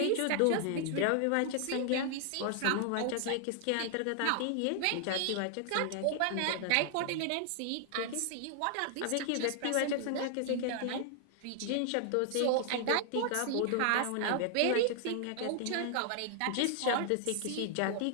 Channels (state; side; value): different; both; correlation 0.00